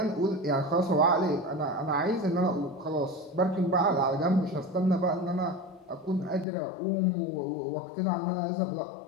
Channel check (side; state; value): right; drops out; at 6.5 s